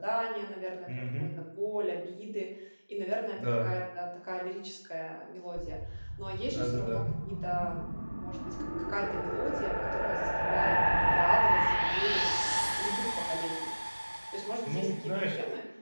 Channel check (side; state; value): both; inverted; correlation -1.00